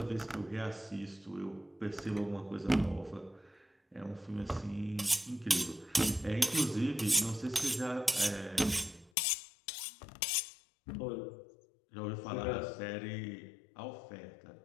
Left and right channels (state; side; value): drops out; right; at 9.1 s